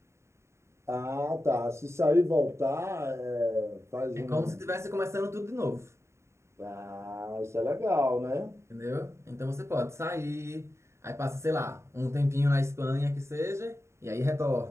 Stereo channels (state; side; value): late; left; 0.13 ms